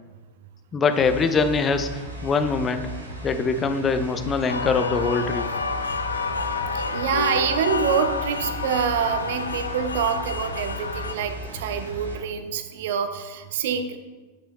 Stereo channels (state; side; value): normal; both; correlation 0.05